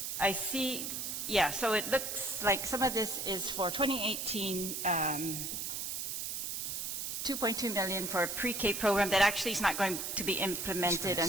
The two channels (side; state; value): right; noise; hiss, 3 dB below the sound